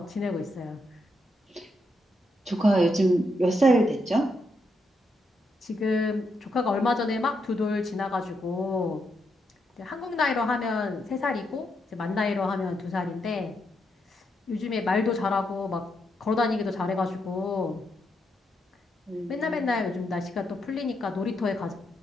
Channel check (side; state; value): both; normal; correlation 0.80